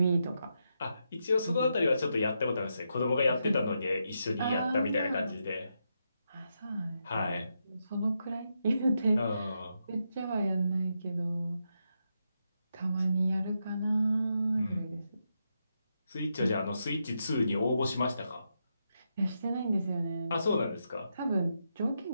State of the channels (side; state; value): both; inverted; correlation -0.83